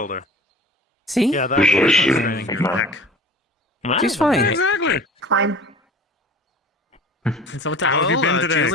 See? Yeah, that's training your neck. She's fine. Exactly. Fine. So what How have you been today?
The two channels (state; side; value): normal; both; correlation 0.41